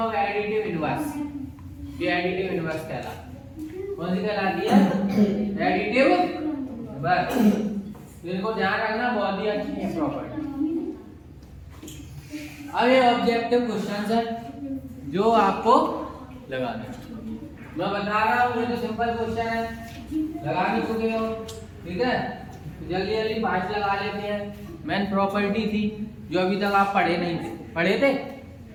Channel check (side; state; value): both; identical; correlation 1.00